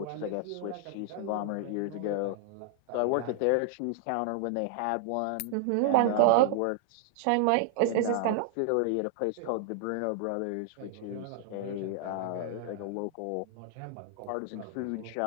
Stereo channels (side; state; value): both; different; correlation -0.01